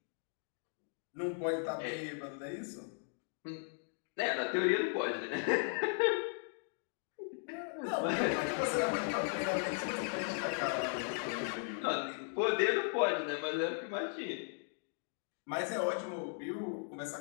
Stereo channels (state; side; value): silent; right; 53 dB below the other